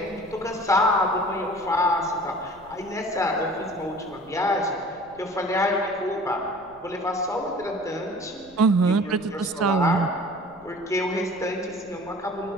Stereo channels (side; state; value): left; noise; rumble, 27 dB below the sound